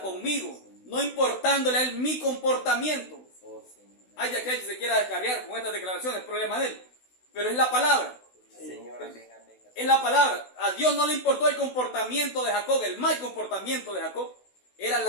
no importándole a Él mi comportamiento. Hay aquel que se quiera descarriar con estas declaraciones, es problema de él. Pero es la palabra. Señor, amén. Es la palabra. A Dios no le importó el comportamiento de Jacob, el mal comportamiento de Jacob. Era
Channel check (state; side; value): late; right; 16 ms